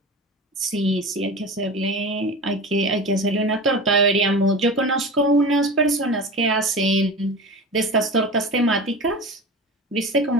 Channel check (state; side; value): normal; both; correlation 0.31